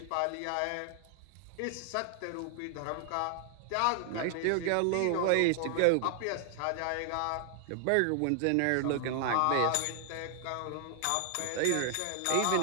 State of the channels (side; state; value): both; different; correlation -0.01